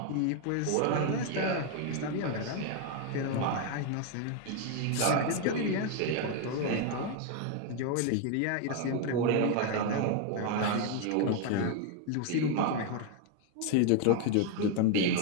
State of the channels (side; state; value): both; different; correlation 0.01